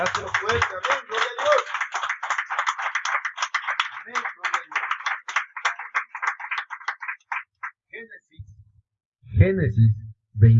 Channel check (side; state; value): both; identical; correlation 1.00